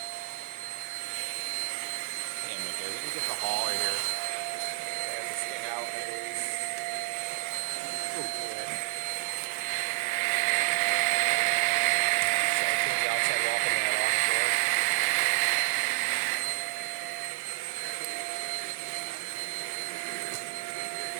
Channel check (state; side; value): quieter; left; 27.5 dB